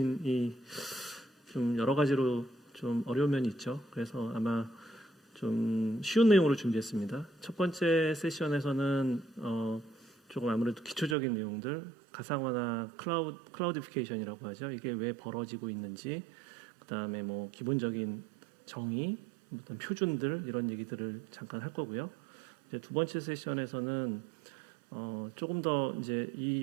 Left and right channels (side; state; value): left; drops out; at 11.2 s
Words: 좀 여러 가지로 좀 어려운 면이 있죠. 그래서 아마 좀 쉬운 내용으로 준비했습니다. 첫 번째 세션에서는 조금 아무래도 기초적인 내용들, 가상화나 클라우디피케이션이라고 하죠. 이게 왜 벌어지고 있는지, 그다음에 뭐 기본적인 정의, 어떤 표준들 이런 얘기들을 잠깐 할 거고요. 이제 두 번째 세션에서는 조금 더 이제